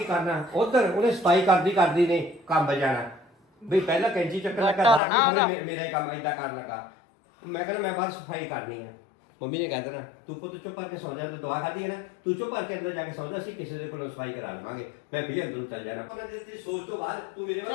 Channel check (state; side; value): drops out; right; at 5.0 s